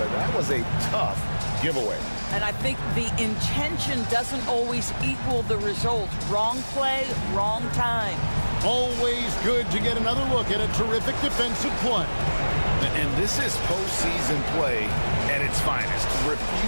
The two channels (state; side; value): inverted; both; correlation -1.00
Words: but that was a tough giveaway. And I think the intention doesn't always equal the result. Wrong play, wrong time. Always good to get another look at a terrific defensive play. And this is postseason play at its finest,